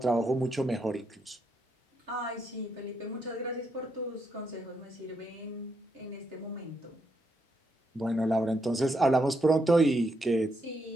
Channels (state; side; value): normal; both; correlation 0.79